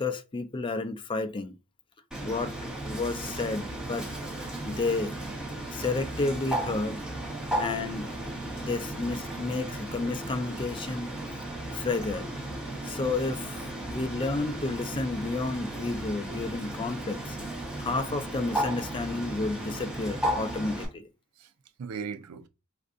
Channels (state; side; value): normal; both; correlation 0.56